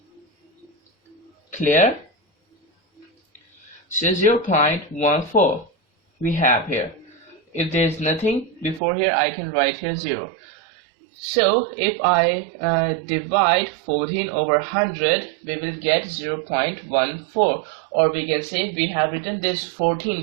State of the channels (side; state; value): left; drops out; at 8.8 s